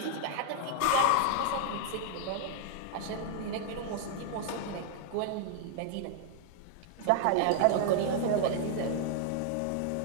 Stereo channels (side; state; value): both; different; correlation 0.00